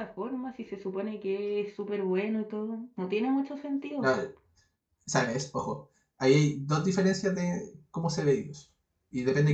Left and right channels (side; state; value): both; identical; correlation 1.00